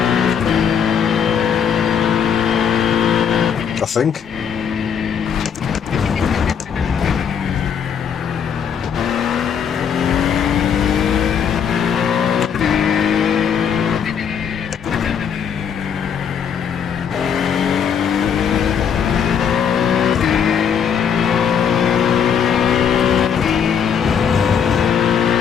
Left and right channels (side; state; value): right; quieter; 7.5 dB